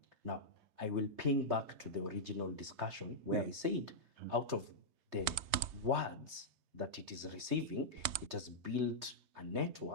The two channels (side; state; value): left; late; 3.2 ms